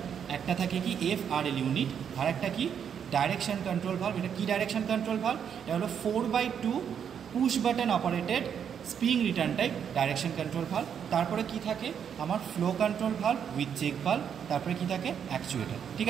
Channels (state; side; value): quieter; left; 8.0 dB